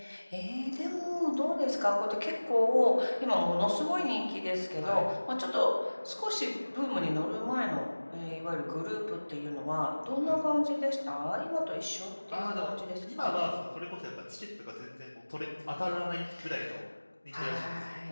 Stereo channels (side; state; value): both; inverted; correlation -1.00